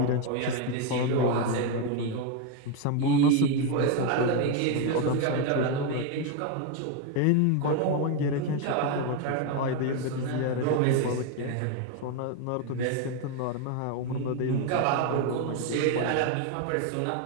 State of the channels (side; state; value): both; different; correlation 0.01